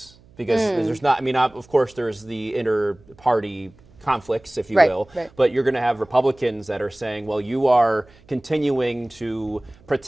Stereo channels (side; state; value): right; noise; hum, 27 dB below the sound